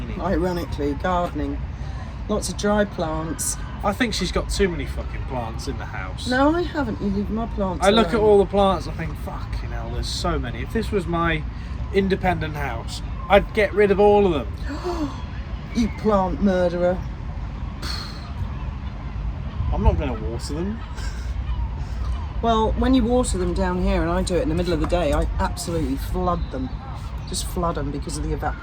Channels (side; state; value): both; identical; correlation 1.00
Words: Ironically, gardening. Lots of dry plants. I think she's got too many fucking plants in the house. No, I haven't. You leave my plants I look at alone. all the plants, I think, fucking hell, there's so many. If this was my independent house, I'd get rid of all of them. You plant murderer. I'm not going to water them. Well, when you water them down here, and I do it in the middle of the day, I absolutely flood them. Just flood them because of the